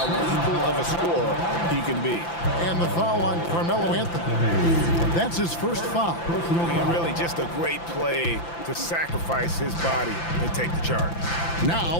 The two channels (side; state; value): right; late; 5.9 ms